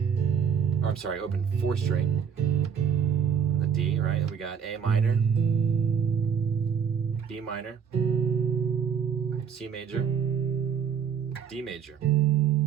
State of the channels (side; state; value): left; quieter; 7.3 dB